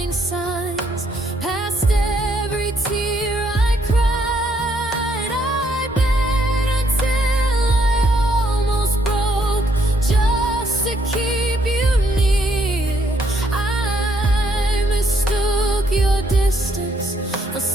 signs, past every tear I cried. I bet until I almost broke just to keep you near. I mistook your distance for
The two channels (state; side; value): normal; both; correlation 0.71